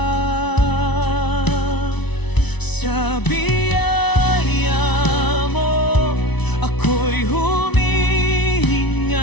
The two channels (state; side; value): late; right; 0.99 ms